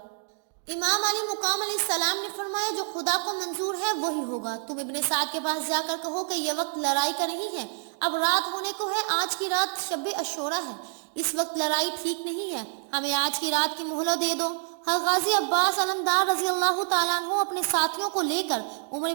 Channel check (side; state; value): left; silent; 56 dB below the other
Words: امام علی مقام علیہ السلام نے فرمایا، جو خدا کو منظور ہے وہی ہوگا۔ تم ابن سعد کے پاس جا کر کہو کہ یہ وقت لڑائی کا نہیں ہے، اب رات ہونے کو ہے، آج کی رات شب عاشورہ ہے، اس وقت لڑائی ٹھیک نہیں ہے، ہمیں آج کی رات کی مہلت دے دو۔ حضرت غازی عباس علمدار رضی اللہ تعالیٰ عنہ اپنے ساتھیوں کو لے کر عمر